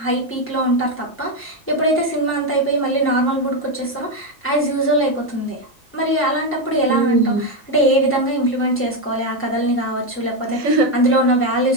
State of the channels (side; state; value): both; normal; correlation 0.07